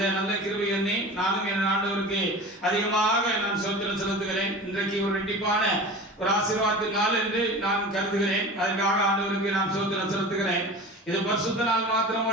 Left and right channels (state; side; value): normal; both; correlation 0.35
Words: நல்ல கிருபை எண்ணி நானும் என் ஆண்டவருக்கு அதிகமாக நான் ஸ்தோத்திரம் செலுத்துகிறேன். இன்றைக்கு ஒரு ரெட்டிப்பான ஒரு ஆசீர்வாதத்தின் நாள் என்று நான் கருதுகிறேன். அதற்காக ஆண்டவருக்கு நான் ஸ்தோத்திரம் செலுத்துகிறேன். இது பரிசுத்த நாள்